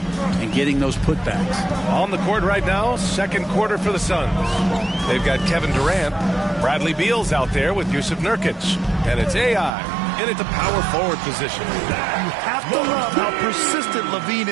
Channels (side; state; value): left; drops out; at 9.7 s